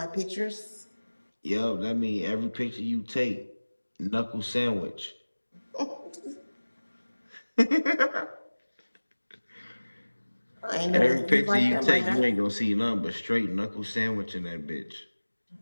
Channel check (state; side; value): inverted; both; correlation -1.00